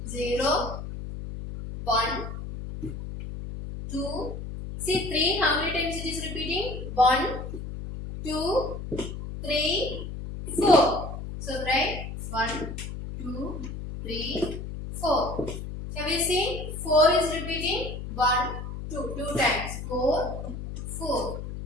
0, 1, 2. See 3, how many times it is repeating? 1, 2, 3, 4. So write 1, 2, 3, 4. Now we see 4 is repeating 1, 2 times. 4, 4.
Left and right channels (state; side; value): noise; left; hum, 8 dB below the sound